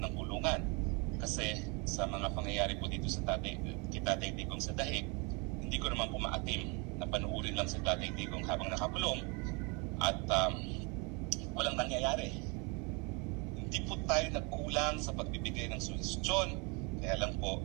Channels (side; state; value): left; quieter; 30.9 dB